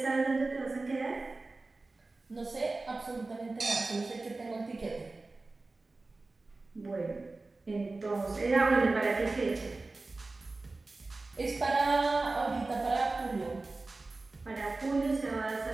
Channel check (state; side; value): quieter; left; 3.4 dB